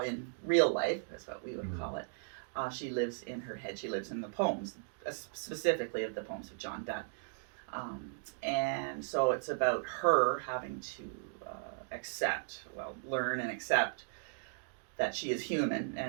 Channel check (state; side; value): silent; left; digital silence